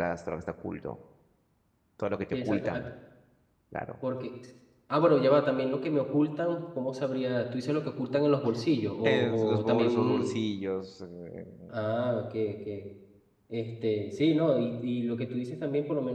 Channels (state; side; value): identical; both; correlation 1.00